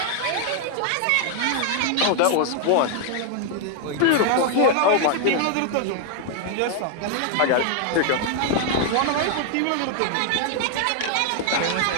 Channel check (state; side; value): different; both; correlation 0.00